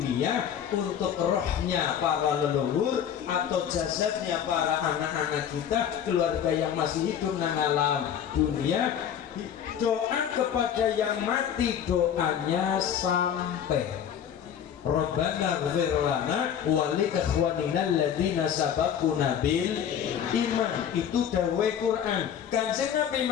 untuk rohnya para leluhur atau jasadnya para anak-anak kita keluarga yang masih hidup nang alam dunia. Doa kepada yang mati doanya sampai Rabbana ighfir lana wa li ikhwanina alladziina sabaquna bil iman. Itu dawuh Quran. Kanjeng Nabi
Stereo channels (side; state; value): right; quieter; 8.9 dB